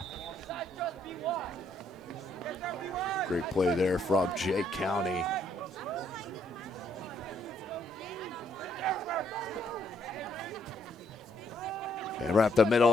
Great play there from Jay County. And right up the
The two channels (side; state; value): both; normal; correlation 0.70